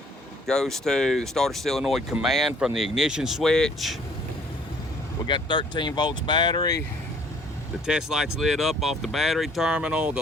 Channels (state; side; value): normal; both; correlation 0.59